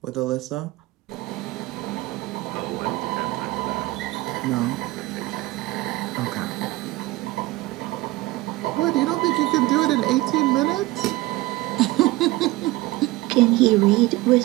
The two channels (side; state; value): left; quieter; 19.2 dB